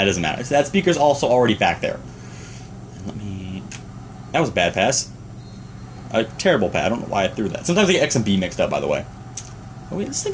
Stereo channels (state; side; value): identical; both; correlation 1.00